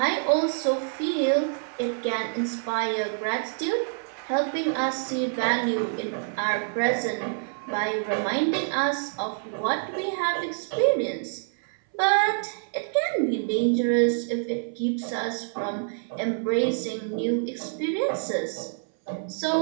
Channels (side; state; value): left; silent; 59 dB below the other